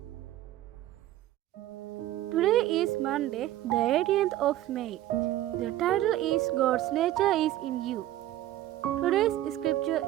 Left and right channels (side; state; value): left; quieter; 14.1 dB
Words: Today is Monday, the 18th of May. The title is God's Nature is in You. Today's scripture